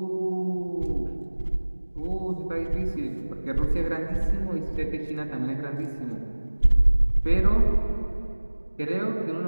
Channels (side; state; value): both; inverted; correlation -1.00